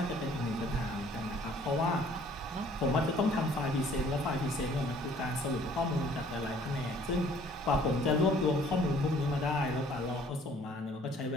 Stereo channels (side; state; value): both; normal; correlation 0.57